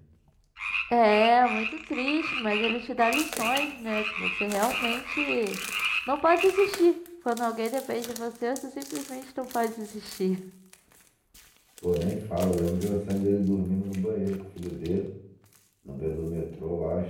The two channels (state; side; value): identical; both; correlation 1.00